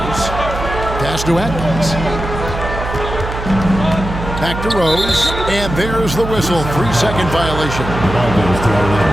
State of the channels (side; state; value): right; noise; hum, 7 dB below the sound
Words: Pass to Atkins. Back to Rose, and there's the whistle. 3-second violation. Ball goes to